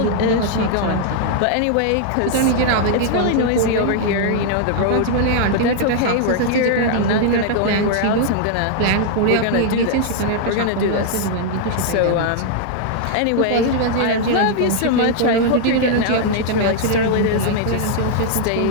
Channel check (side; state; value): both; different; correlation -0.01